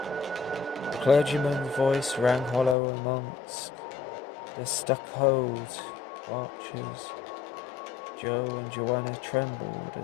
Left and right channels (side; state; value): right; drops out; at 2.8 s